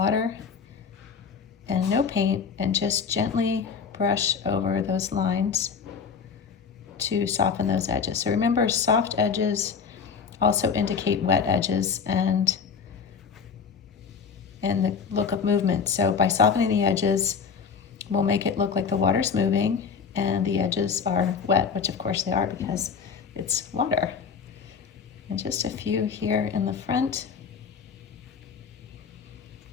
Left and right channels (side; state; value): right; quieter; 6.1 dB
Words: and no paint, and just gently brush over those lines to soften those edges. So remember, soft edges also indicate wet edges and the look of movement. So by softening the edges, we'll make it look like the water's moving and the edges are wet, which of course they are because it's water. And just a few here in the front.